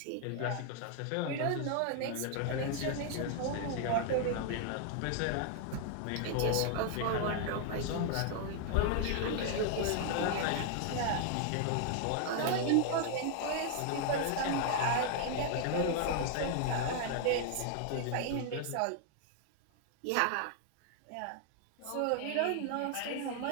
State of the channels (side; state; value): both; different; correlation 0.00